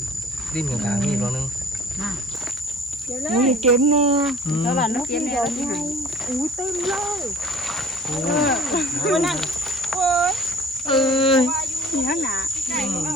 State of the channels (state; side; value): normal; both; correlation 0.49